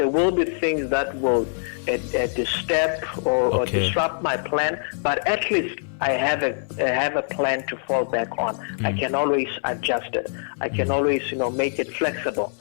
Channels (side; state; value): right; silent; 63 dB below the other